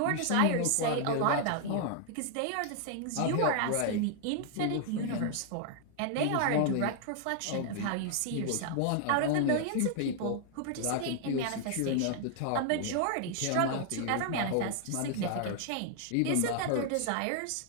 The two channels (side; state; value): both; different; correlation 0.00